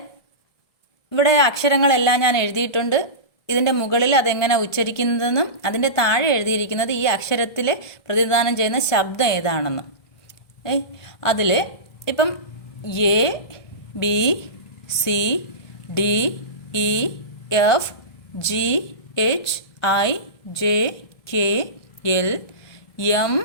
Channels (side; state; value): right; late; 1.7 ms